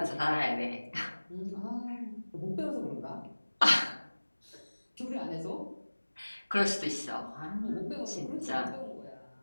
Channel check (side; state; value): both; inverted; correlation -1.00